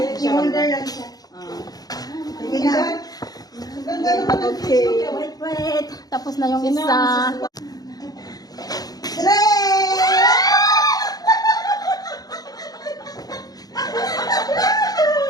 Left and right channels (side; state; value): right; late; 0.19 ms